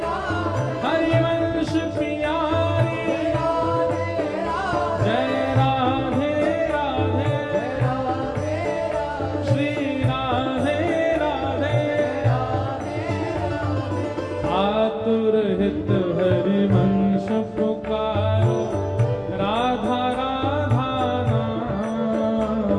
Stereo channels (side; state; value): both; identical; correlation 1.00